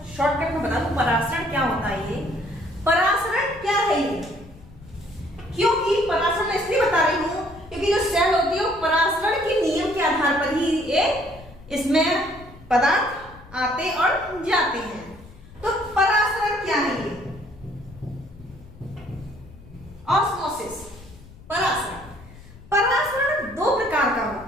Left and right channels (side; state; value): left; noise; rumble, 20 dB below the sound